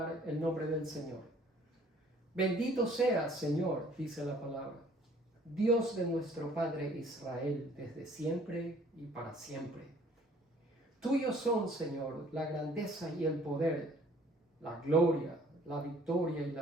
el nombre del Señor. Bendito seas, Señor, dice la palabra, Dios de nuestro Padre Israel, desde siempre y para siempre. Tuyos son, Señor, la grandeza y el poder, la gloria, la victoria y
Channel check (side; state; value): both; normal; correlation 0.56